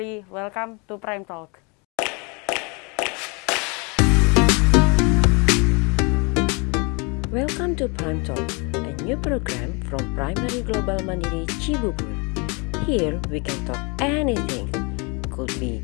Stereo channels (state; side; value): quieter; right; 31.5 dB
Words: welcome to Prime Talk. Welcome to Prime Talk, a new program from Primary Global Mandiri Cibubur. Here we can talk anything. Could